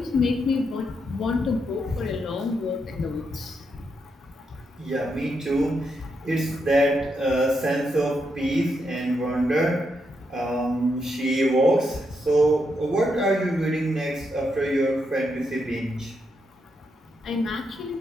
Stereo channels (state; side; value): normal; both; correlation 0.81